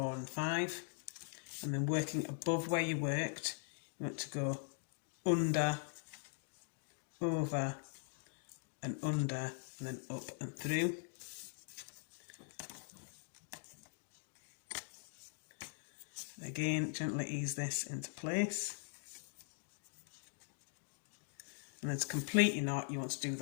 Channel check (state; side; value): silent; right; digital silence